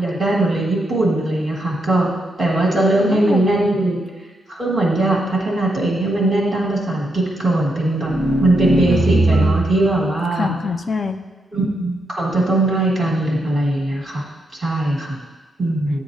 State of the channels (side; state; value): both; normal; correlation 0.81